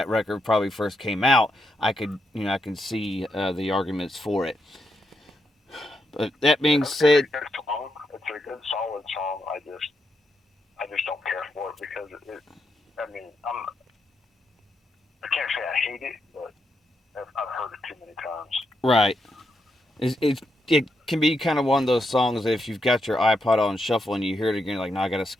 record probably first came out. I can see the arguments for it. But that being said, It's a good solid song. I just don't care for it because I mean, I can't say I hate it, but I've heard it too many times. Right. It can be kind of one of those songs that if you've got your iPod on shuffle and you hear it again, you're like, no, I gotta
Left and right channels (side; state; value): both; normal; correlation 0.82